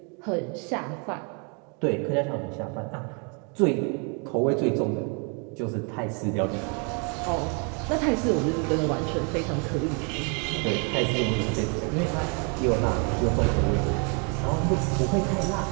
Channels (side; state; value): left; quieter; 36.4 dB